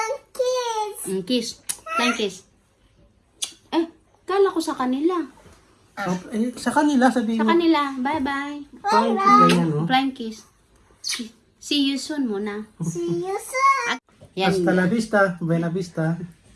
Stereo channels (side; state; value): both; identical; correlation 1.00